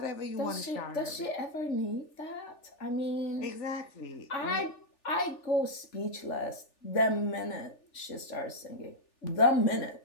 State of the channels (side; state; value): right; late; 3.4 ms